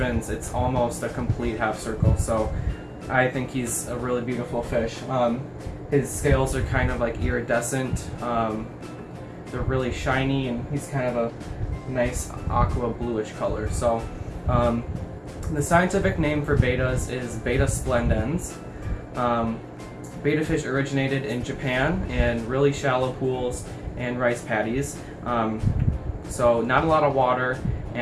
it's almost a complete half circle. So I think he's a really beautiful fish. His scales are kind of like iridescent. They're really shiny, and he's kind of a nice aqua bluish color. So the scientific name for betas is Betta splendens. Betta fish originated in Japan in really shallow pools and rice paddies. So not a lot of water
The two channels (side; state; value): both; identical; correlation 1.00